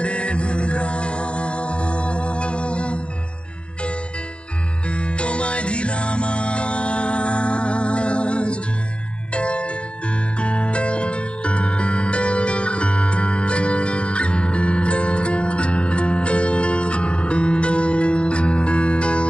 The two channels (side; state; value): right; late; 0.057 ms